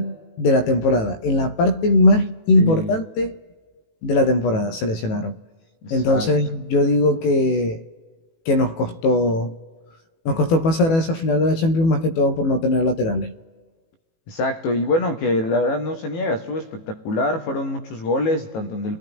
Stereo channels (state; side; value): late; right; 18 ms